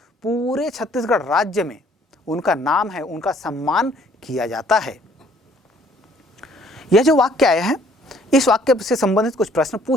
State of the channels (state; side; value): normal; both; correlation 0.60